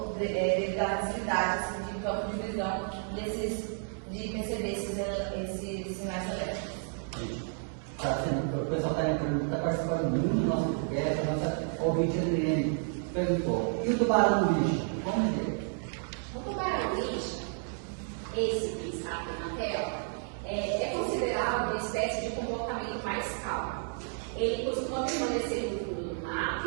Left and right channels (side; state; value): left; silent; 57 dB below the other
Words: devido à facilidade assim, de campo de visão de perceber esses sinais elétricos. O pessoal está participando muito do nosso podcast, a nossa ouvinte Adriane perguntou: e o tubarão-lixo? Como é ele? O tubarão-lixo, esse que está aqui na tela, é considerado uma espécie de comportamento mais calmo. Ele costuma permanecer no fundo do mar,